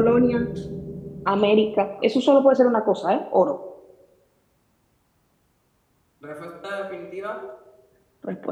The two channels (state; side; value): identical; both; correlation 1.00